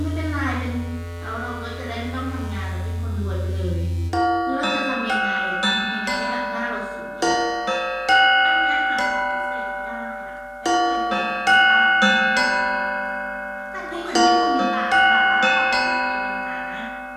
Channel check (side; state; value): both; identical; correlation 1.00